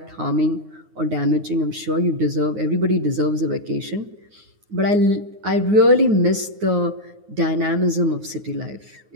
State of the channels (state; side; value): late; left; 9.6 ms